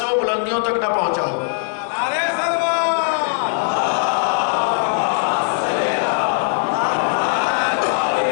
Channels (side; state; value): right; silent; digital silence